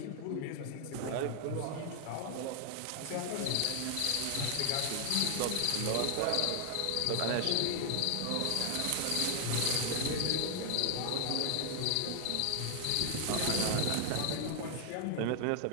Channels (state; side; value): different; both; correlation 0.00